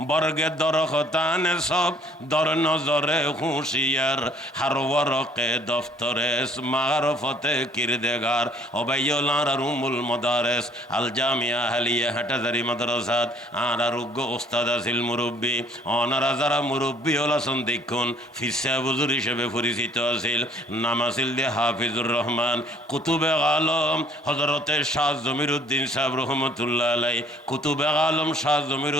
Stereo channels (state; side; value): normal; both; correlation 0.59